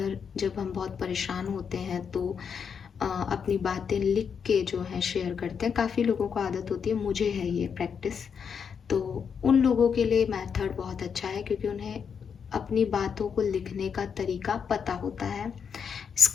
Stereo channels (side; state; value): right; quieter; 6.8 dB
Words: जब हम बहुत परेशान होते हैं तो अपनी बातें लिख के जो है शेयर करते हैं। काफ़ी लोगों को आदत होती है, मुझे है ये प्रैक्टिस। तो उन लोगों के लिए मेथड बहुत अच्छा है, क्योंकि उन्हें अपनी बातों को लिखने का तरीका पता होता है।